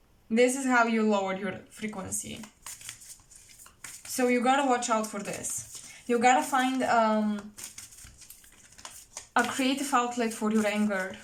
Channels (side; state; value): both; identical; correlation 1.00